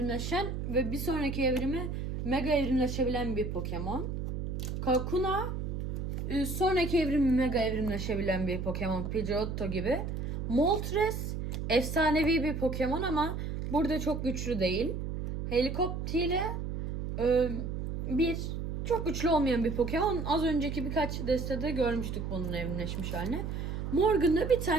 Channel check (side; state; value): right; noise; hum, 4 dB below the sound